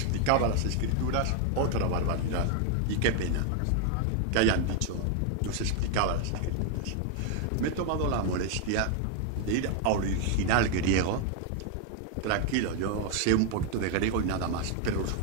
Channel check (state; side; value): different; both; correlation 0.00